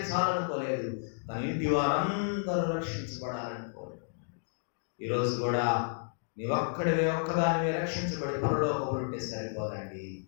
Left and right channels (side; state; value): right; silent; digital silence